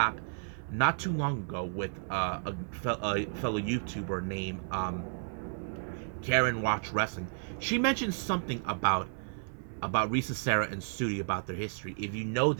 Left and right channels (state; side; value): silent; left; digital silence